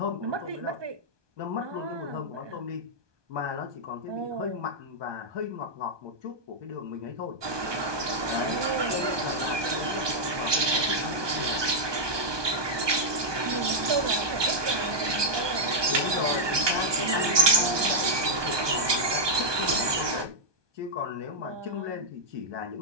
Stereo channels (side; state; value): left; late; 1.2 ms